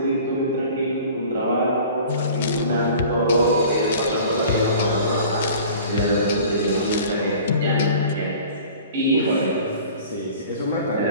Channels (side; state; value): both; inverted; correlation -0.44